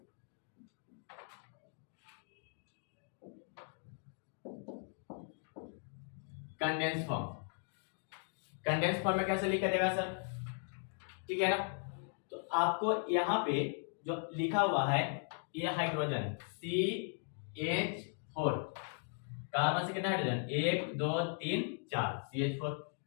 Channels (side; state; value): right; silent; 52 dB below the other